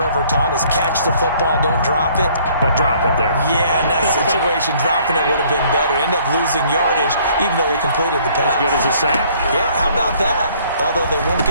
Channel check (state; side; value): inverted; both; correlation -0.60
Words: ever taught is catch the football, don't drop it. But drop it there. Yeah, in that situation, dropping it would have been better. End up losing yardage, even though they completed the pass. As good as a sack. Yeah, how about that? Although they won't